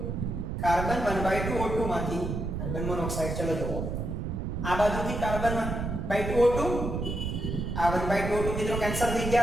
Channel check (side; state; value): right; noise; rumble, 3 dB below the sound